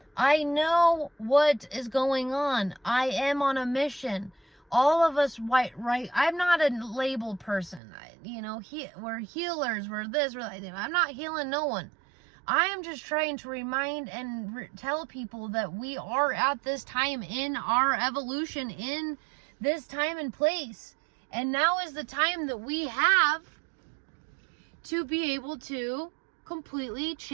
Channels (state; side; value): drops out; left; at 7.8 s